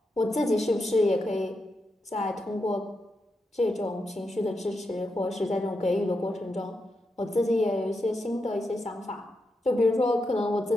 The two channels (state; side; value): normal; both; correlation 0.85